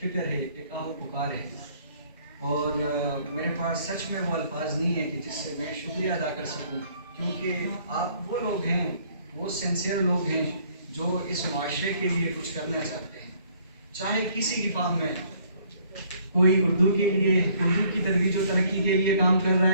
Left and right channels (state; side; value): inverted; both; correlation -0.62